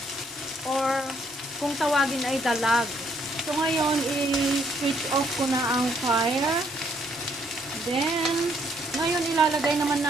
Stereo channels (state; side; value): normal; both; correlation 0.69